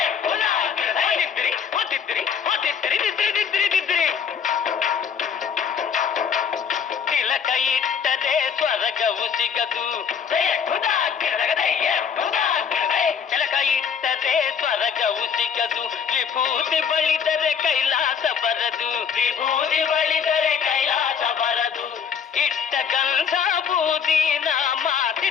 ತಿಲಕ ಇಟ್ಟದೆ ಸ್ವರ್ಗವು ಸಿಗದು ತಿಲಕ ಇಟ್ಟದೆ ಸ್ವರ್ಗವು ಸಿಗದು ವಿಭೂತಿ ಬಳಿದರೆ ಕೈಲಾಸ ಬರದು ವಿಭೂತಿ ಬಳಿದರೆ ಕೈಲಾಸ ಬರದು ಇಟ್ಟ ಗಂಧ ಬೂದಿ ನಾಮ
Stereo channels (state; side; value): quieter; right; 7.0 dB